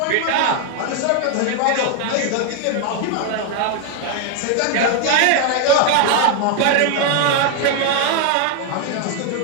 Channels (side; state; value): both; different; correlation 0.00